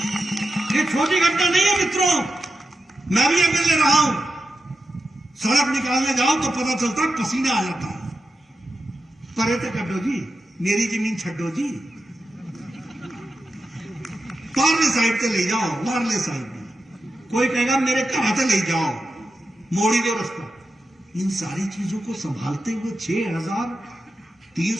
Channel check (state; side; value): normal; both; correlation 0.90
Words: ये छोटी घटना नहीं है मित्रों, मैं भी एमएलए रहा हूं। सड़क निकालने जाओ तो पता चलता है पसीना आ जाता है। परे तो कड्डो जी, मेरी जमीन छड्डो जी, पारले साइड से ले जाओ, वारले साइड में कोई कहेगा मेरे घर से ले जाओ, मोड़ी दो रास्ता। इन सारी चीजों को संभालते हुए